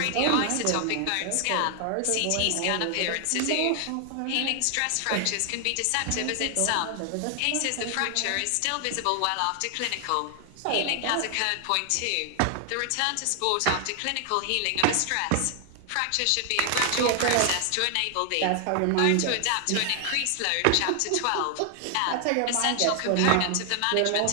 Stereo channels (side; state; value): both; different; correlation 0.00